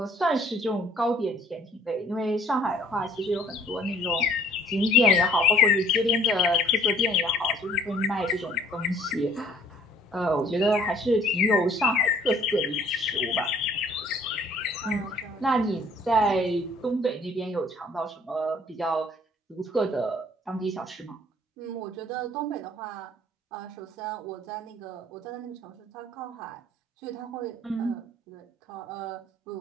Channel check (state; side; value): normal; both; correlation 0.57